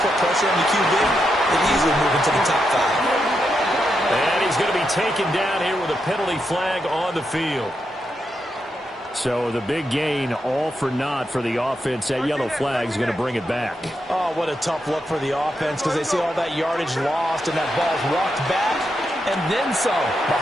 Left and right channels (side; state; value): both; normal; correlation 0.84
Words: put pressure on the QB, they'd easily move into the top 5. And he's going to be taken down here with a penalty flag on the field. So the big gain, all for naught for the offense. That yellow flag is going to bring it back. Oh, what a tough look for the offense because they see all that yardage lost and that ball's walked back and then some